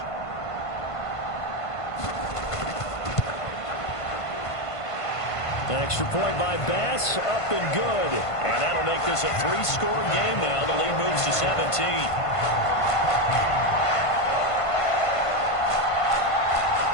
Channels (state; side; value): late; right; 1.5 ms